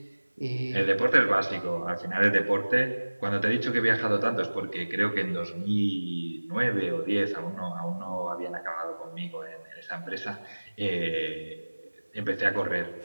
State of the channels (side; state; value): both; inverted; correlation -1.00